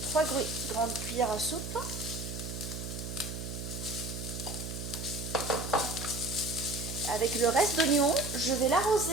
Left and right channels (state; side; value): noise; right; hum, 7 dB below the sound